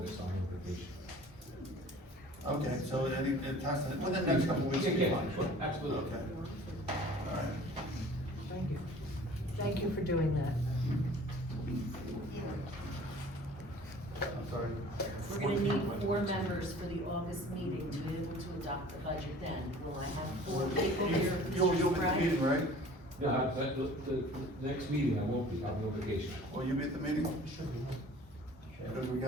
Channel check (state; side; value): normal; both; correlation 0.47